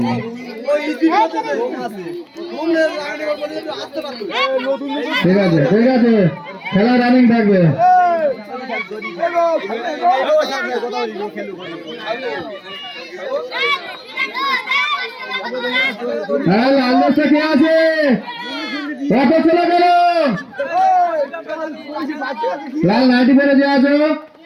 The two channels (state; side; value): identical; both; correlation 1.00